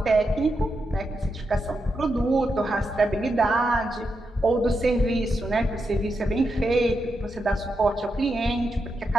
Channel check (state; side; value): normal; both; correlation 0.85